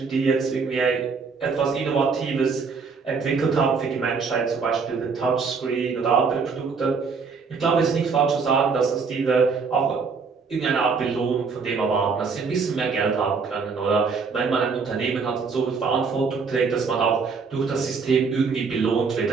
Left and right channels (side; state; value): left; quieter; 5.1 dB